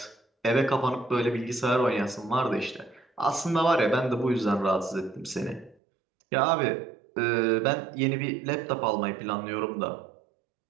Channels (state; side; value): drops out; left; at 5.8 s